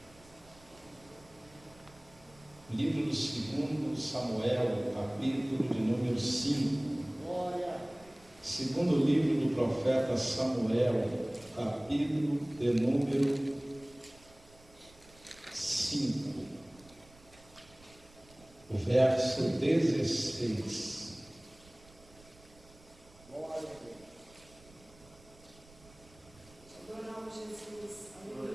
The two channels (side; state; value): right; noise; rumble, 25 dB below the sound